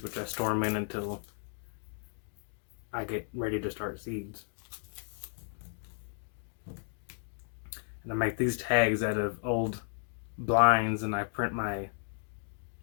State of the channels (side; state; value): right; silent; 55 dB below the other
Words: which I store them in until I get ready to start seeds. And I make these tags out of old blinds, and I print my